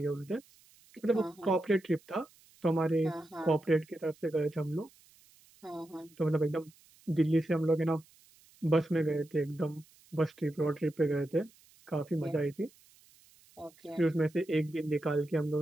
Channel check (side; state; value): right; noise; hiss, 28 dB below the sound